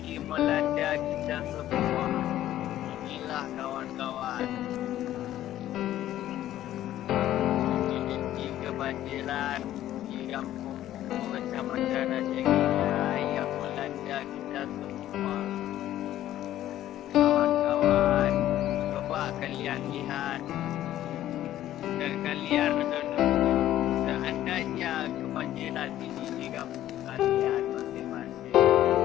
melanda kita semua. Inilah kawan-kawan, terjadi kebanjiran di kampung Kumo, Kecamatan Rajagi yang melanda kita semua. Kawan-kawan, coba kalian lihat dan kalian renung, seandainya kebanjiran ini di kampung kalian masing-masing,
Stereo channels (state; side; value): quieter; right; 13.0 dB